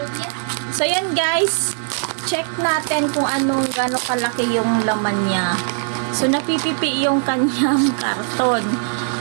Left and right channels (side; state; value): left; silent; 66 dB below the other